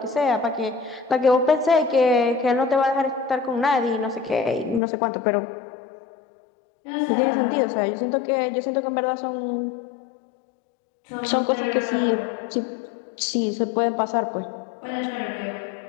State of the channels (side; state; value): right; drops out; at 4.8 s